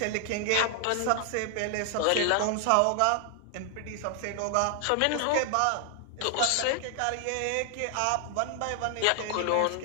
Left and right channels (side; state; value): both; different; correlation 0.00